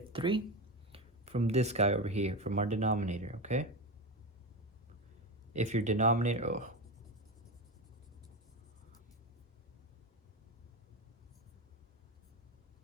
3? From this guy over here, from our denominator, okay? If your denominator,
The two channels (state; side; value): normal; both; correlation 0.19